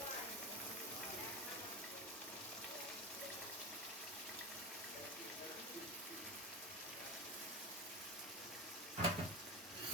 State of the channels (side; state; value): both; normal; correlation 0.49